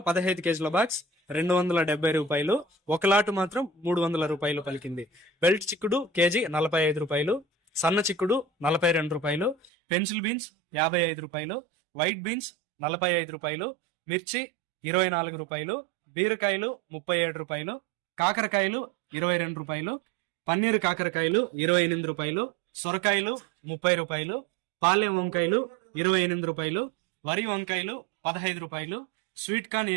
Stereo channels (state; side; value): drops out; left; at 9.7 s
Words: 15 కేజీల బాక్స్ 270 రూపాయలు, ఒక లాటు మాత్రం 300 రూపాయలు పలికింది. బెల్ట్ చిక్కుడు కేజీ 45 రూపాయలు, సన్న చిక్కుడు 42 రూపాయలు, పెన్సిల్ బీన్స్ 55 రూపాయలు, వైట్ బీన్స్ 45 రూపాయలు, మిర్చి 24 రూపాయలు, బీరకాయలు 37 రూపాయలు, కాకరకాయలు 22 రూపాయలు, పన్నీరు కాకరకాయలు 28 రూపాయలు, సొరకాయలు 30 రూపాయలు, పాలెం వంకాయలు 28 రూపాయలు, వరి వంకాయలు 15 రూపాయలు, స్వీట్ కార్న్